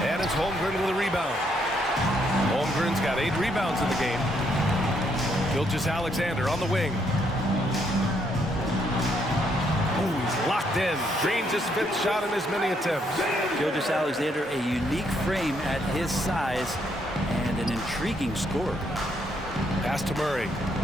And it's Holmgren with a rebound. Holmgren's got 8 rebounds in the game. Gilgeous-Alexander on the wing. Ooh, he's locked in. Drains his 5th shot in as many attempts. Gilgeous-Alexander, a unique frame at his size and an intriguing scorer. Pass to Murray.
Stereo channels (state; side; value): normal; both; correlation 0.73